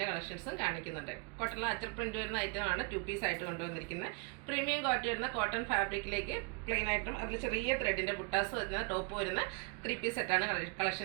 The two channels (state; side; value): quieter; left; 32.1 dB